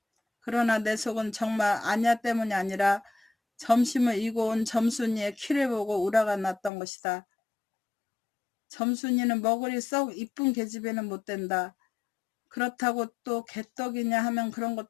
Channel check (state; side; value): drops out; right; at 6.7 s